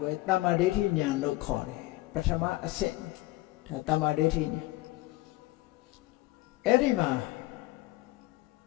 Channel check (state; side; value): quieter; right; 19.2 dB